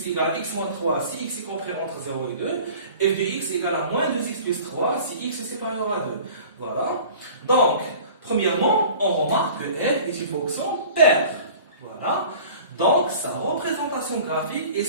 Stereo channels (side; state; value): both; inverted; correlation -0.44